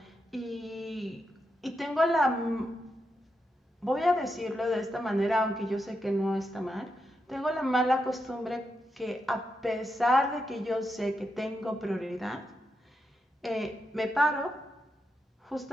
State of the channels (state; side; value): normal; both; correlation 0.85